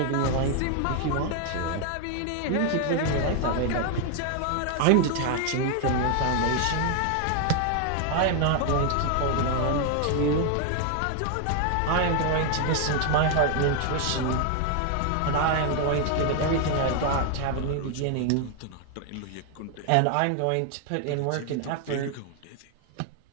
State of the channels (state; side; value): different; both; correlation 0.00